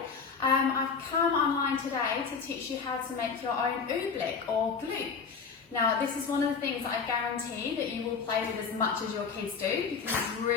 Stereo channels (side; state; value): right; quieter; 5.6 dB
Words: I've come online today to teach you how to make your own Oobleck or Gloop. Now this is one of the things that I guarantee that you will play with as much as your kids do because it's